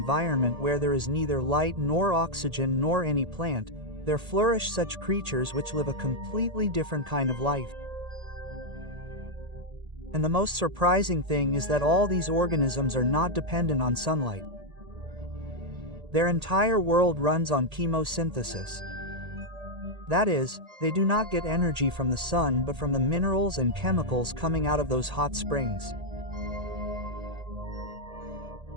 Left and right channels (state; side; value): late; left; 1.8 ms